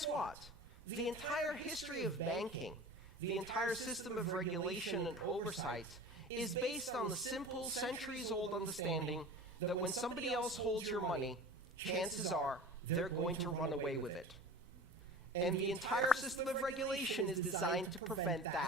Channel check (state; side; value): normal; both; correlation 0.37